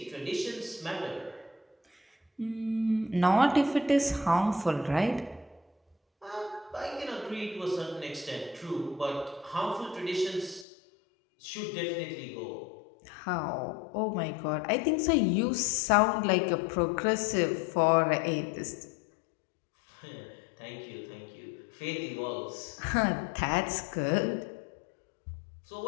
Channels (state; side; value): drops out; right; at 10.7 s